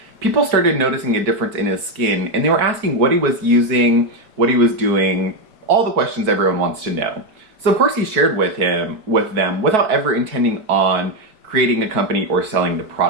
People started noticing a difference in his skin, and they were asking what he was using, what he was doing, all the questions everyone wants to know. So of course he shared with them without ever intending on creating a company or selling the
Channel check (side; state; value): left; late; 4.6 ms